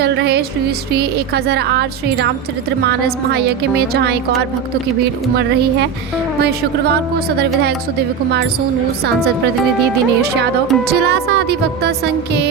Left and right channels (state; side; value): quieter; left; 6.9 dB